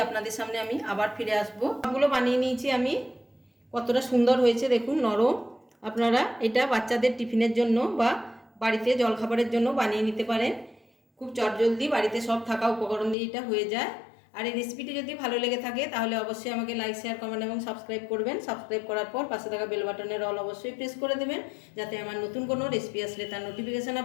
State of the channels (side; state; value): right; drops out; at 13.2 s